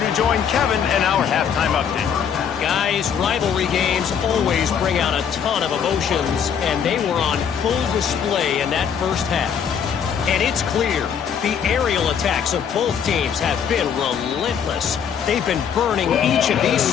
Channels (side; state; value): right; quieter; 7.7 dB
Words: join Kevin and our halftime update. Guys, rivalry games always bring out a ton of emotions, and they were on full display in that first half. And it's clear the aerial attacks of both teams have been relentless. They've been burning each of these